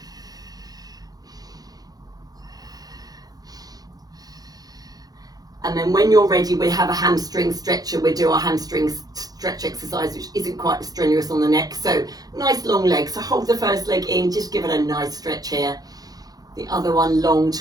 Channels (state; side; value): late; left; 0.19 ms